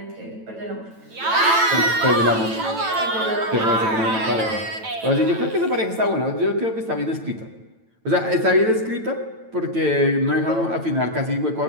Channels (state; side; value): late; left; 9.0 ms